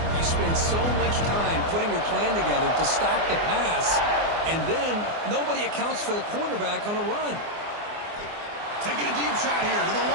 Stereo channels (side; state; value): left; late; 24 ms